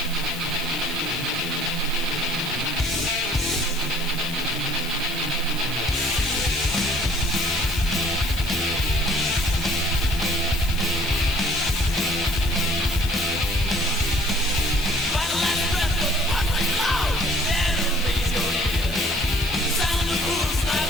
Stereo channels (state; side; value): noise; left; hiss, 13 dB below the sound